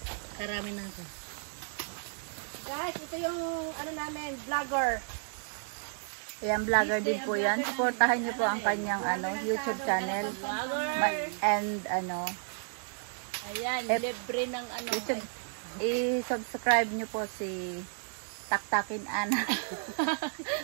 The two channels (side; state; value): left; silent; digital silence